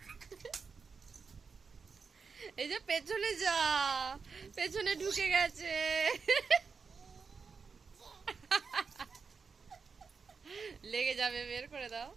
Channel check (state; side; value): quieter; left; 5.3 dB